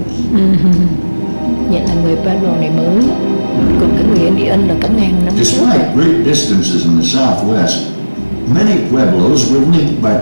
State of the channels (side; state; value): both; inverted; correlation -1.00